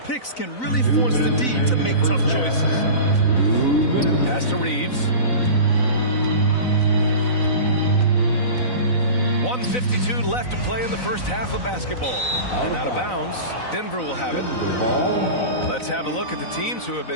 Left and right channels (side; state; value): right; late; 4.0 ms